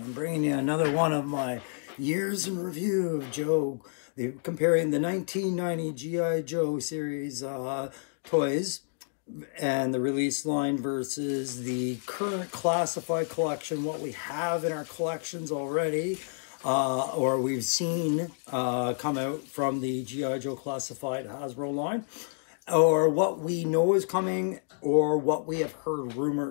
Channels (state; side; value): silent; right; digital silence